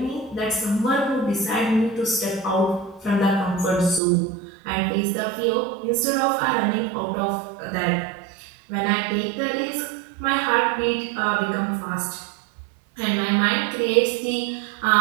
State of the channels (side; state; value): left; drops out; at 4.0 s